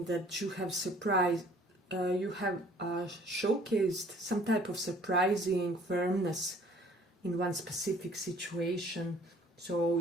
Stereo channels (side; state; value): both; normal; correlation 0.55